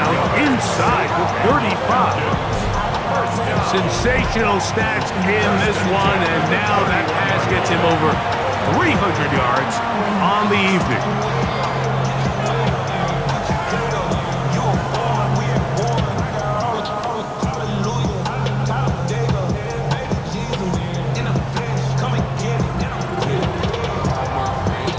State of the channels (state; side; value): identical; both; correlation 1.00